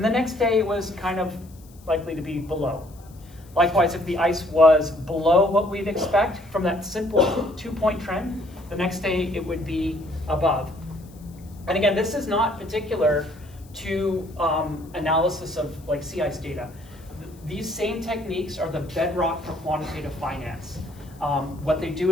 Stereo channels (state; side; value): noise; left; hiss, 27 dB below the sound